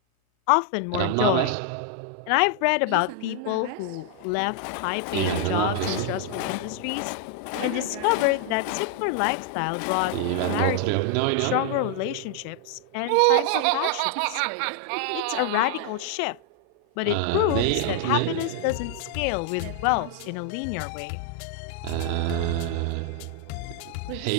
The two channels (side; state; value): both; different; correlation 0.00